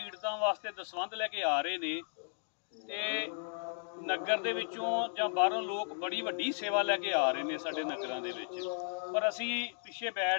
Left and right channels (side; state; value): right; silent; digital silence